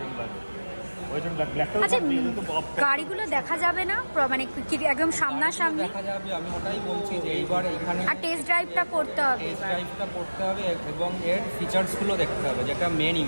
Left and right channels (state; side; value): inverted; both; correlation -1.00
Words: আচ্ছা, গাড়িগুলো দেখা যাবে না মানে একদম সামনাসামনি দেখা যাবে, আমি ওটাই বলছি যে এইবার এখানে আর টেস্ট ড্রাইভটা করতে হবে, এবং এর ফিচার্সগুলো দেখতে হবে, যেটা